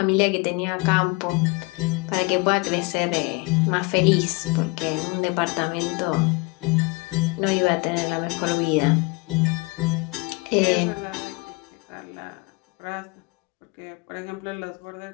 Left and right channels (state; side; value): quieter; right; 26.8 dB